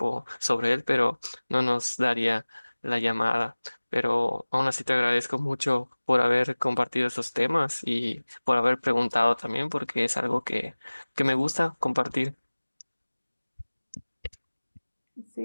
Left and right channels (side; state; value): both; inverted; correlation -1.00